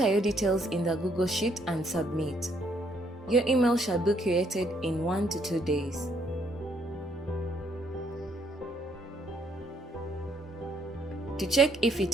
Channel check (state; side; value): normal; both; correlation 0.69